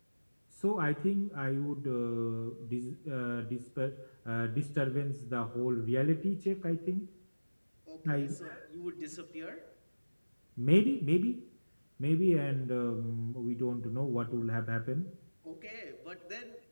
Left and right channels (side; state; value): both; inverted; correlation -1.00